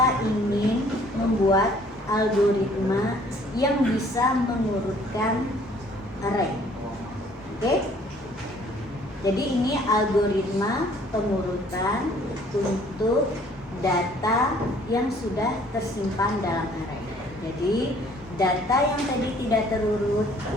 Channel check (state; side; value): normal; both; correlation 0.58